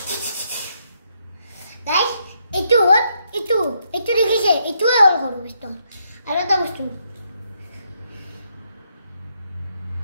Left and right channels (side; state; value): both; inverted; correlation -0.76